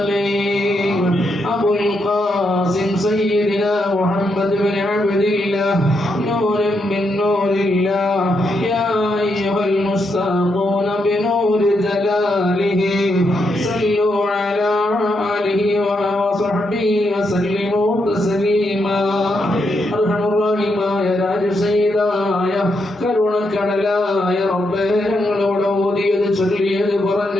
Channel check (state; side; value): normal; both; correlation 0.81